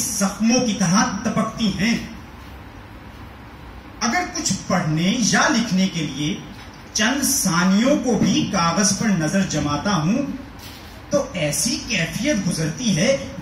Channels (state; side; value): identical; both; correlation 1.00